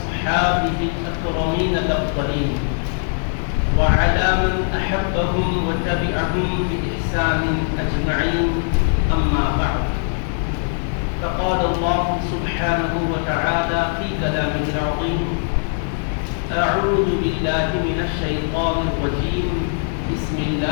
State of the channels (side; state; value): right; silent; digital silence